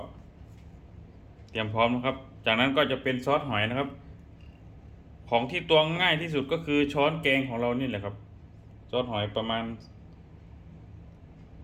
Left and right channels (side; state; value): both; identical; correlation 1.00